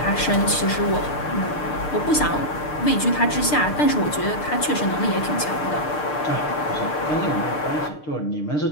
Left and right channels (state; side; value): late; right; 6.6 ms